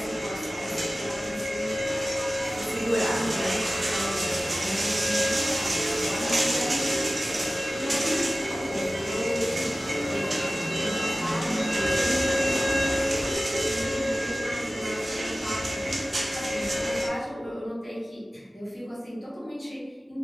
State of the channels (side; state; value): both; normal; correlation 0.97